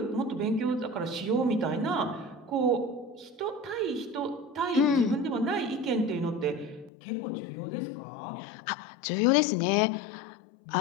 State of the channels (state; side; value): drops out; right; at 6.9 s